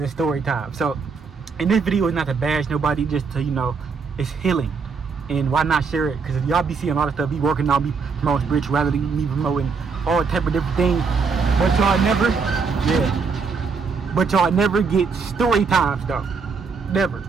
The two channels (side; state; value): left; quieter; 5.2 dB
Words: story time. So, and this video is not to bash nobody, just to, you know, it's healing. And why not share it? Because y'all be seeing a lot of stuff, be working on, be promoting spirituality, me promoting all type of different things. But y'all never, but y'all never get story times though. Never.